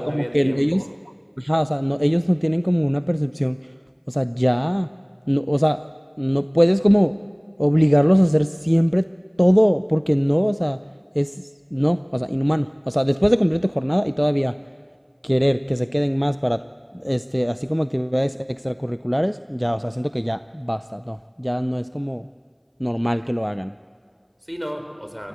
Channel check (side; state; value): both; identical; correlation 1.00